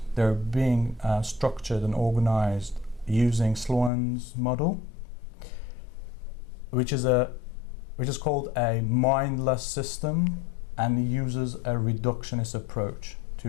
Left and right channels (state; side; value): drops out; right; at 3.9 s